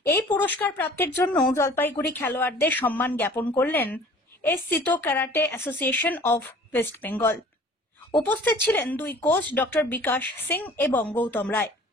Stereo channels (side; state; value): both; normal; correlation 0.48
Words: এই পুরস্কার প্রাপ্তির জন্য জলপাইগুড়ি খেলোয়াড়দের সম্মান জ্ঞাপন করলেন সিতো karate association of West Bengal. উপস্থিত ছিলেন 2 কোচ ডক্টর বিকাশ সিং এবং গৌতম রায়।